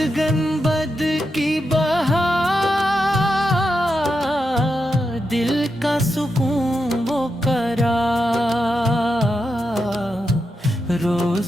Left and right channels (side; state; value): both; normal; correlation 0.86